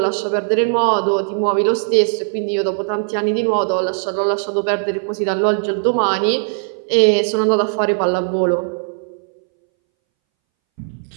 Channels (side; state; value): left; silent; 64 dB below the other